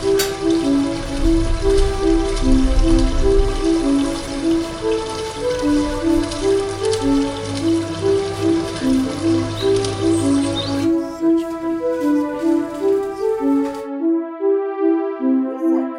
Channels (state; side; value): identical; both; correlation 1.00